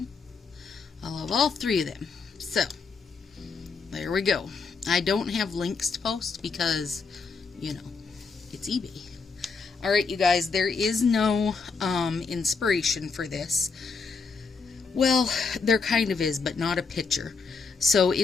I love all three of them. So, there we go. I don't have links to post because, you know, it's eBay. Alright, you guys, there is no inspiration for this. Well, there kind of is, but not a picture. So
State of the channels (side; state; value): right; quieter; 4.8 dB